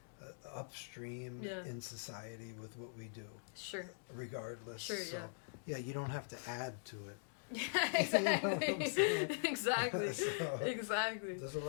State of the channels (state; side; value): silent; right; digital silence